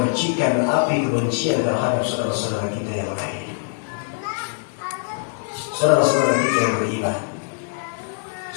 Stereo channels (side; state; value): right; silent; digital silence